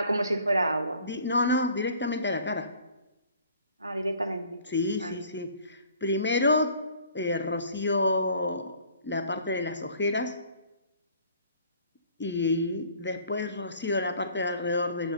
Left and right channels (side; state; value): both; inverted; correlation -0.53